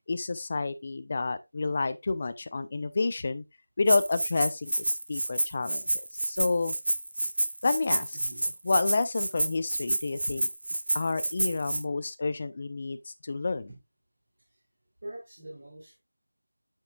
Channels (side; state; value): both; inverted; correlation -0.96